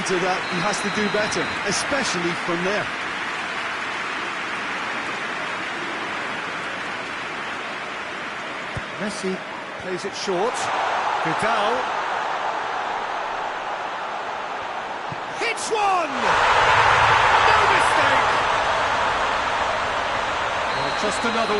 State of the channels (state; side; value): identical; both; correlation 1.00